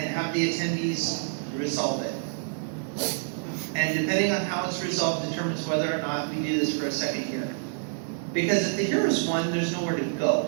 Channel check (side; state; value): left; silent; 60 dB below the other